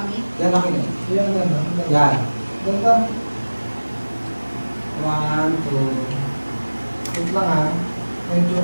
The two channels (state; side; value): inverted; both; correlation -1.00